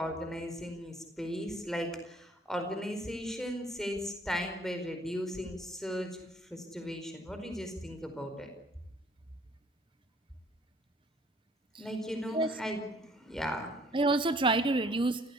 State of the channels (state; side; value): normal; both; correlation 0.59